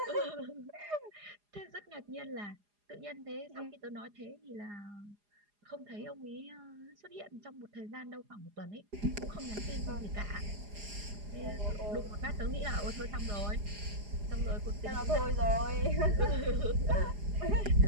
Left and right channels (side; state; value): left; late; 4.9 ms